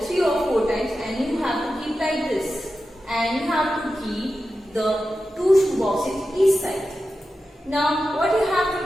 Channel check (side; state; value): both; normal; correlation 0.92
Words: 3 or 4 times and you have to keep like this. And you have to keep the two shoe boxes each side. Now what you have